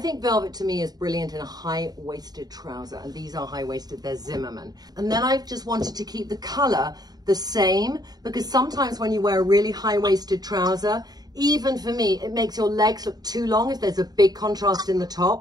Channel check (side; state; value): left; late; 0.19 ms